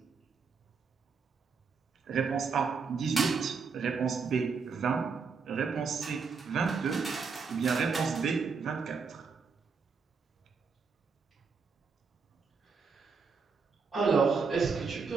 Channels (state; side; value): quieter; left; 5.2 dB